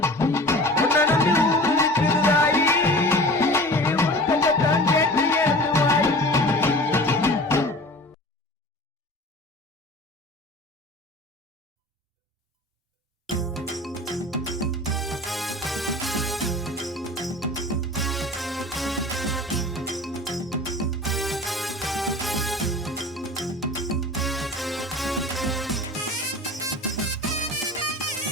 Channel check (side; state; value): both; normal; correlation 0.39